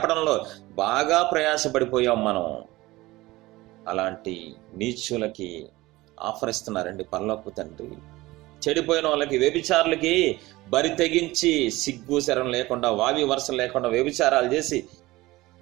బాగా ప్రయాసపడిపోయాం మనం. అలాంటి నీచులకి ఆఫర్ ఇస్తున్నారండి పరలోకపు తండ్రి. చెడిపోయిన వాళ్ళకి, వ్యభిచారులకి బరి తెగించి సిగ్గు శరం లేకుండా, వావి వరుసలు లేకుండా వ్యభిచారాలు చేసి,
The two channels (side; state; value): left; quieter; 19.2 dB